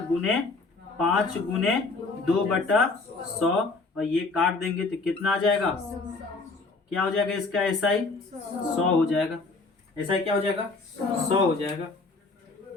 गुने 5 गुने 2 बटा 100, और ये काट देंगे तो कितना आ जाएगा, क्या हो जाएगा इसका, एस आई 100 हो जाएगा। एस आई क्या हो जाएगा, 100 हो जाएगा।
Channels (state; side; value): quieter; right; 3.7 dB